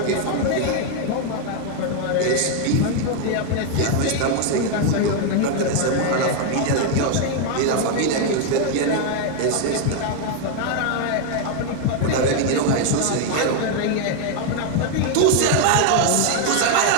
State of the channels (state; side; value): different; both; correlation 0.01